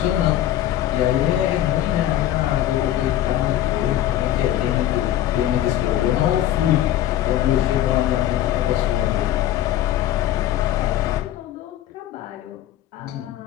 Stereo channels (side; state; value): right; quieter; 12.5 dB